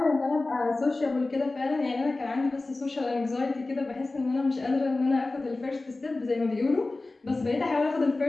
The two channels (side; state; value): right; quieter; 3.2 dB